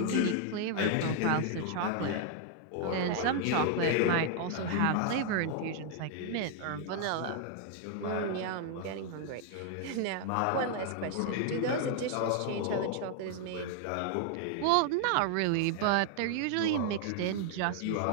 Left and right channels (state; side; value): different; both; correlation 0.00